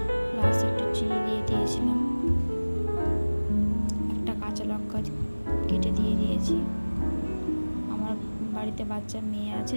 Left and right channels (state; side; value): inverted; both; correlation -1.00